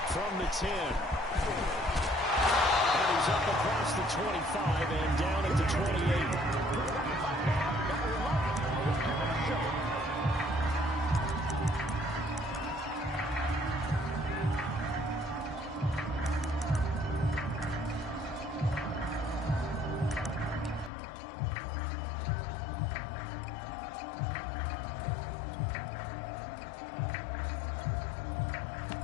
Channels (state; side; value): drops out; right; at 20.9 s